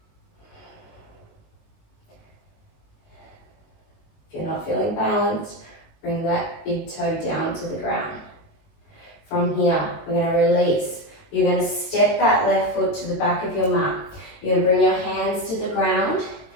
If you're not feeling balanced, bring that big toe down to the ground. From here, we're going to release. You're going to step that left foot to the back of your mat. You're going to bring your hands to the ground,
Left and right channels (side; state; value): right; late; 19 ms